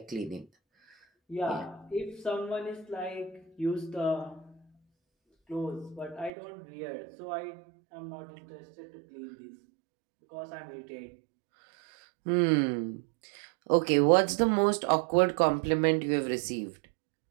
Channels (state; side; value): drops out; left; at 6.3 s